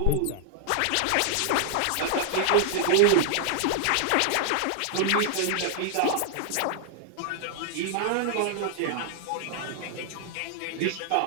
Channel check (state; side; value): different; both; correlation 0.00